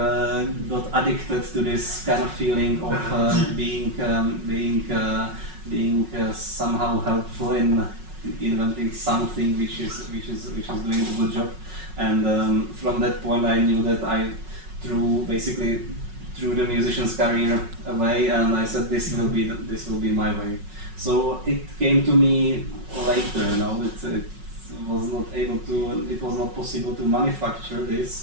addicted to this kind of feeling of being somehow helpful in inventing something which is doing a good job. And from that point, I knew that I threw the musician's career away, and I said this will be my way. So it came to me later. It was not possible to manufacture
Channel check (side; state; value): left; late; 5.4 ms